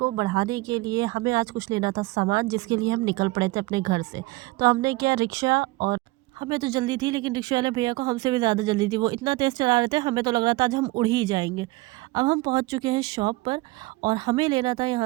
बढ़ाने के लिए हमें आज कुछ लेना था सामान, जिसके लिए हम निकल पड़े थे अपने घर से। तो हमने किया रिक्शा, और हमें तो जल्दी थी लेकिन रिक्शा वाले भैया को हमसे भी ज़्यादा जल्दी थी। वो इतना तेज़ चला रहे थे, हमें तो लग रहा था आज हम उड़ ही जाएंगे। अब हम पहुँच चुके हैं शॉप पर और हमें लेना था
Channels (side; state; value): left; quieter; 21.1 dB